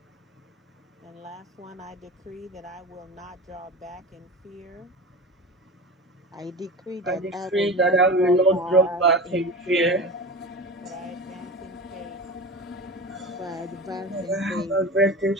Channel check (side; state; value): both; normal; correlation 0.31